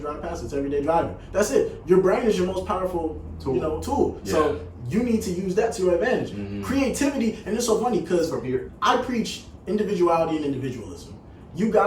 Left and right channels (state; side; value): identical; both; correlation 1.00